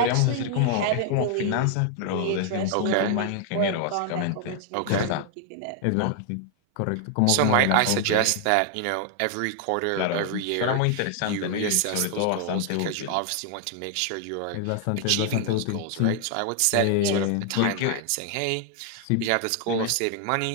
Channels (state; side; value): different; both; correlation 0.00